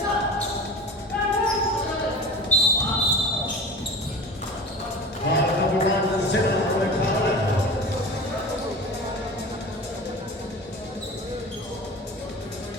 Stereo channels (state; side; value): normal; both; correlation 0.34